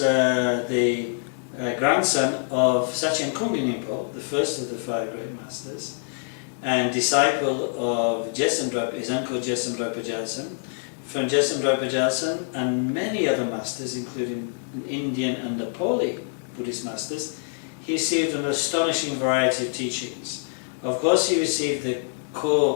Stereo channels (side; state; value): right; silent; digital silence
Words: grandson of Sakya Pandita, the first of the five great masters, and disciple of his uncle Jesamdra Pajalsan. From Jesamdra Pajalsan and many other masters, including Indian and Nepali Buddhist masters, he received an astonishing variety of teachings. Of course, he received the